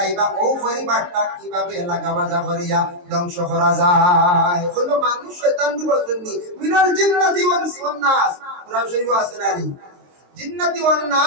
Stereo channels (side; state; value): left; late; 22 ms